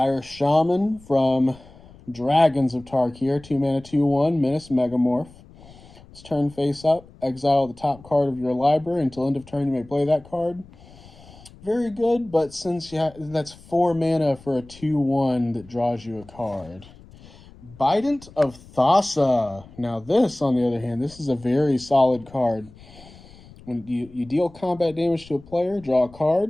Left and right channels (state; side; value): noise; left; rumble, 22 dB below the sound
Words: Shaman from Dragons of Tarkir. 2 mana, 2/1. Menace Megamorph. It's turn face up. Exile the top card of your library. Until end of turn, you may play that card. Very good, but since that's 4 mana for a 2/1 that draws you a card. Bident of Thassa. Now this, on the other hand, this is a very solid card. When you deal combat damage to a player, draw a